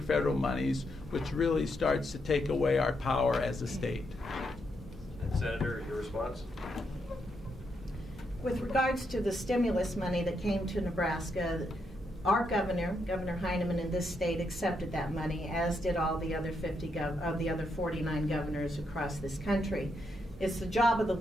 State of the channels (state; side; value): normal; both; correlation 0.80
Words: federal monies, which really starts to take away our power as a state. And Senator, your response? With regards to the stimulus money that came to Nebraska, our Governor Heineman in this state accepted that money, as did all the other 49 governors across this country. It's the job of the